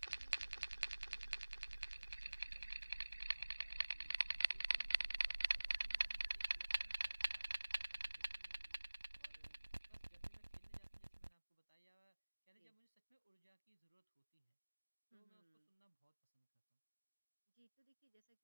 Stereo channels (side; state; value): both; inverted; correlation -1.00